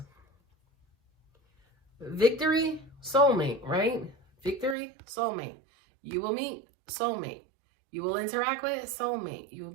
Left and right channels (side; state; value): left; drops out; at 4.8 s